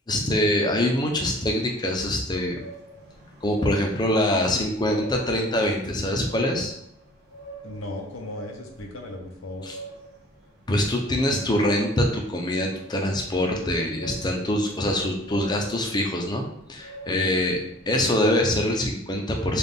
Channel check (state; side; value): normal; both; correlation 0.50